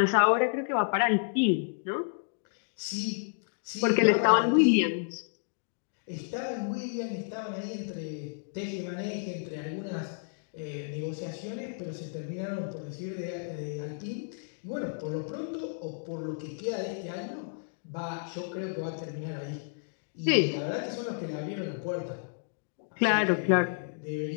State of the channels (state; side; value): silent; right; digital silence